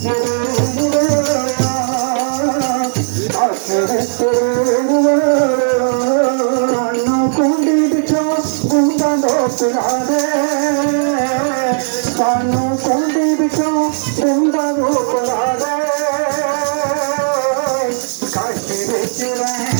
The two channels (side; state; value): left; silent; digital silence